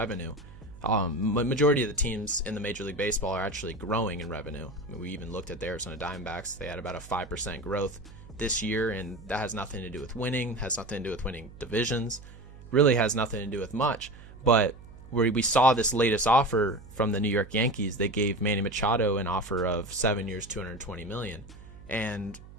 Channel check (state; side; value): noise; right; hum, 18 dB below the sound